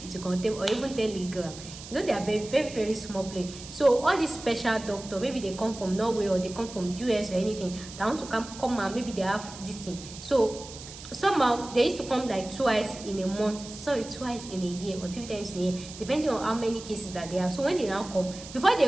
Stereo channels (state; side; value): noise; right; hiss, 14 dB below the sound